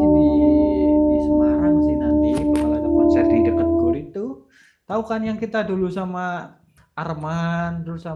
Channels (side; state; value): both; identical; correlation 1.00